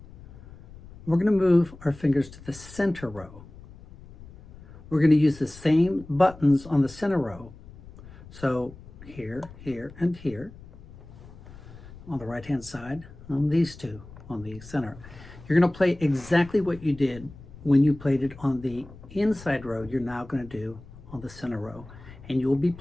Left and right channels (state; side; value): noise; left; rumble, 18 dB below the sound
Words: We're going to move our fingers to the center row. We're going to use the same buttons on the center row. So here, here, and here. On the right-hand side, on these two, on the center. You're going to play exactly what you did when you played it on the inside row. You're now going to do on the center row, and you'll be